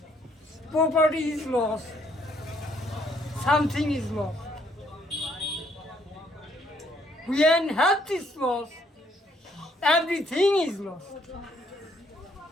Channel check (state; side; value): normal; both; correlation 0.67